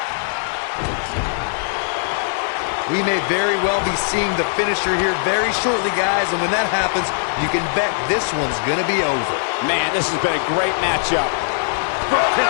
We may very well be seeing the finisher here very shortly, guys, and when that happens, you can bet this one's gonna be over. Man, this has been a great matchup.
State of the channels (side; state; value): right; silent; digital silence